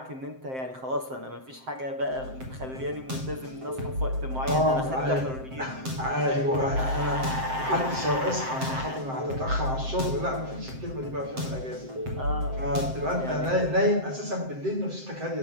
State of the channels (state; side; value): late; left; 7.7 ms